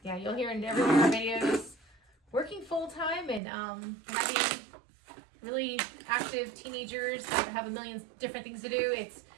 Yeah, you'll hear in every one of our videos, working full-time and having really active teenagers that have a million different things to do. It's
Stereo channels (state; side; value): drops out; left; at 3.4 s